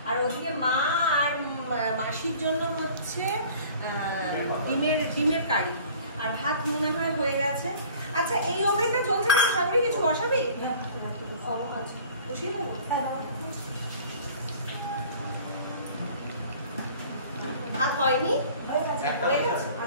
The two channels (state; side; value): inverted; both; correlation -0.48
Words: আর ওদিকে মা আর মাসির জন্য হচ্ছে ডিমের কারি, আর ভাত মনে হয় হয়ে গেছে। আচ্ছা, এই ওভেনটা চলছে না, সামনে কিছু বসাবি? বসিয়ে দেবো। ভাত হয়নি, হয়ে গেছে।